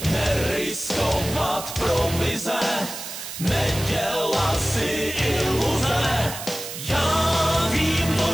neriskovat provize, nedělat si iluze. Já vím to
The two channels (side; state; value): right; noise; hiss, 9 dB below the sound